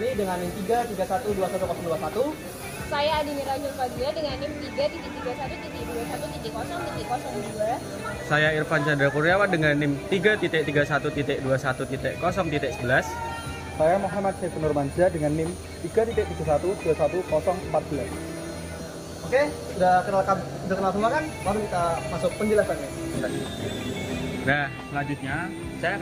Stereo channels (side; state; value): both; identical; correlation 1.00